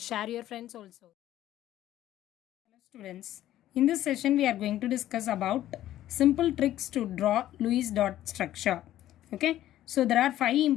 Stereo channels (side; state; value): right; quieter; 13.3 dB